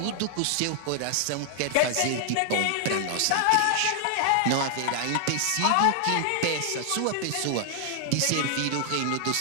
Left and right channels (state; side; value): different; both; correlation 0.00